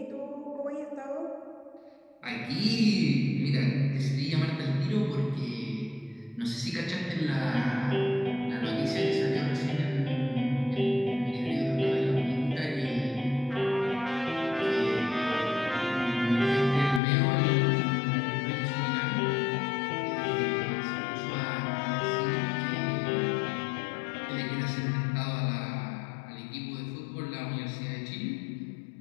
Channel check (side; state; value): right; drops out; at 17.0 s